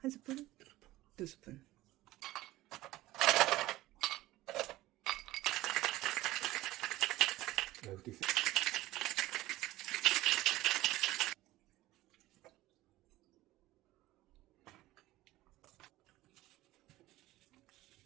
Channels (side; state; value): left; quieter; 17.1 dB